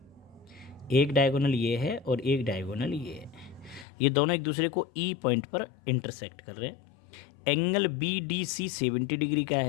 एक डायगोनल ये है और एक डायगोनल ये है, ये दोनों एक दूसरे को E पॉइंट पर इंटरसेक्ट कर रहे हैं। एंगल BDC 70 डिग्री का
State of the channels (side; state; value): right; drops out; at 3.9 s